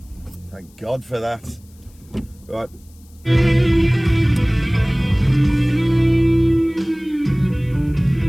Thank God for that. Right.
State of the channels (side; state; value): left; noise; hiss, 30 dB below the sound